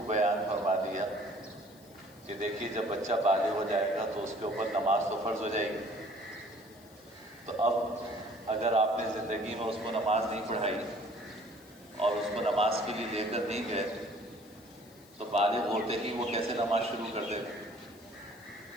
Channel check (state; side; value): noise; left; hiss, 25 dB below the sound